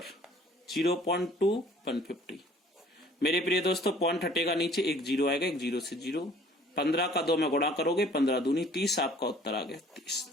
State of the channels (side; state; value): both; normal; correlation 0.54